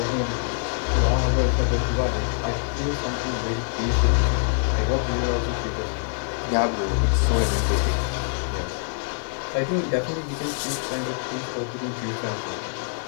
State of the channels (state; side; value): silent; right; digital silence